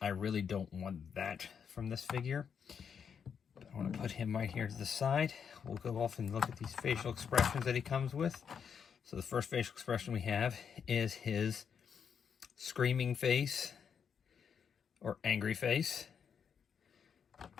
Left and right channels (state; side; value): quieter; right; 7.1 dB